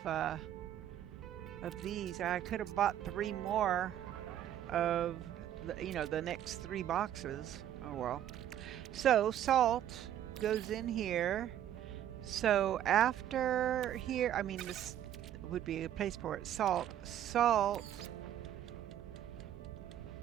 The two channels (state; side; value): quieter; left; 11.2 dB